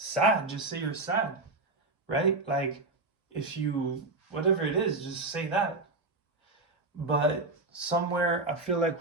just say you're sad, right? Like, if you, whatever it is, just say that. But somewhere I feel like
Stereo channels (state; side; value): quieter; left; 3.1 dB